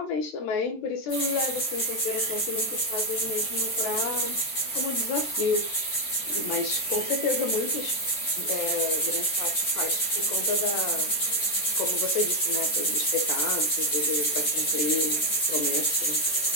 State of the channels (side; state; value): right; late; 14 ms